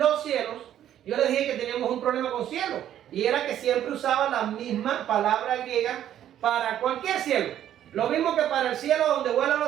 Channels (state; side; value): quieter; left; 11.1 dB